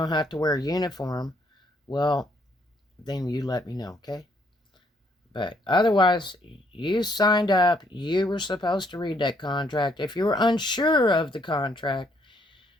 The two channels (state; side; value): normal; both; correlation 0.69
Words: have to wear a uniform, well, then you let me know, okay? But otherwise, you signed up. You were supposed to read that contract. If you were unsure of the contract,